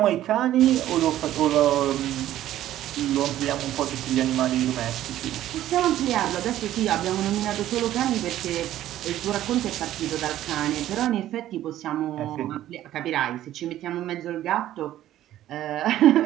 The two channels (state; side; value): quieter; left; 13.1 dB